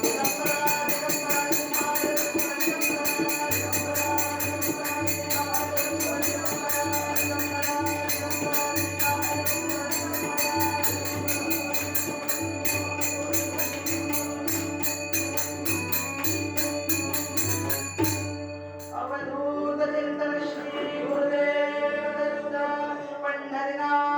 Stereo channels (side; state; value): both; identical; correlation 1.00